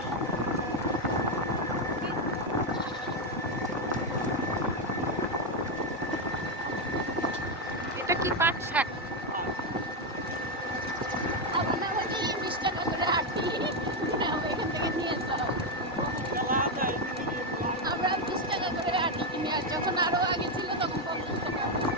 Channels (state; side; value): normal; both; correlation 0.05